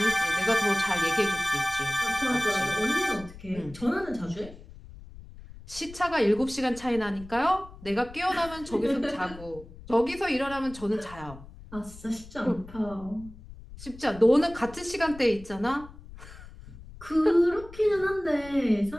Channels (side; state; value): left; noise; rumble, 17 dB below the sound